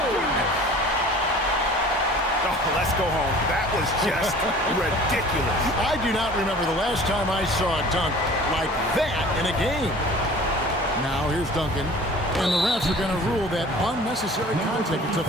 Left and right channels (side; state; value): both; normal; correlation 0.45